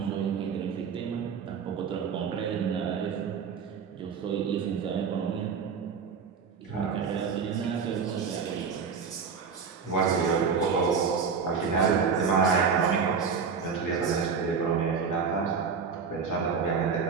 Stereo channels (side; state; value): left; quieter; 6.0 dB